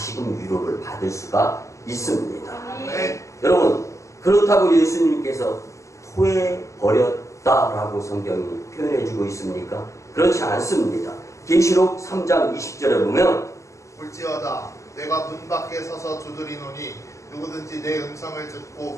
위로를 받을 수가 있습니다. 여러분, 그렇다고 예수님께서 토해버렸다라고 성경이 표현해주고 있습니까? 그렇지 않습니다. 계시록 3장 20절에 보면 볼지어다 내가 문 밖에 서서 두드리노니 누구든지 내 음성을 듣고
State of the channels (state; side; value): late; right; 0.15 ms